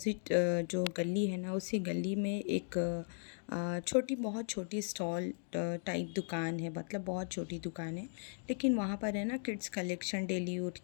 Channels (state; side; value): silent; right; digital silence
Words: जो गली है ना उसी गली में एक छोटी, बहुत छोटी स्टॉल टाइप दुकान है, मतलब बहुत छोटी दुकान है। लेकिन वहाँ पर है ना किड्स कलेक्शन, डेली